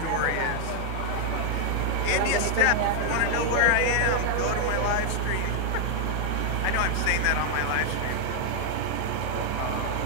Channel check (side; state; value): both; different; correlation 0.00